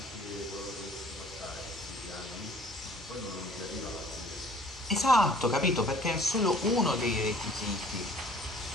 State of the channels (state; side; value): normal; both; correlation 0.53